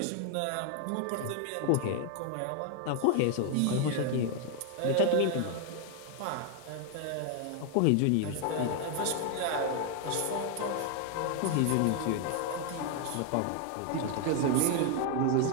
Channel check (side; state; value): both; different; correlation 0.01